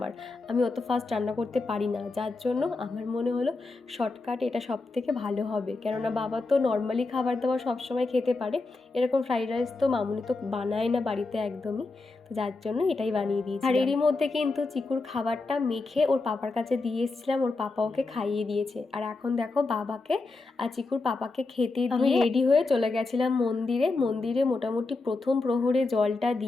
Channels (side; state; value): right; quieter; 3.6 dB